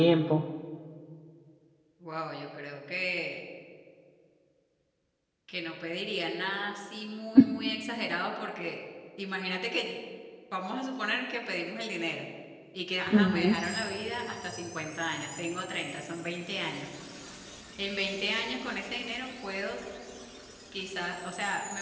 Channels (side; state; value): both; identical; correlation 1.00